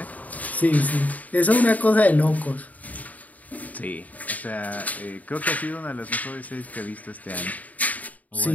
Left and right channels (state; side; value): late; right; 0.074 ms